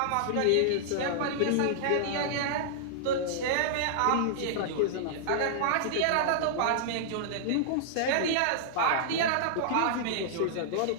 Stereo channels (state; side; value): different; both; correlation -0.01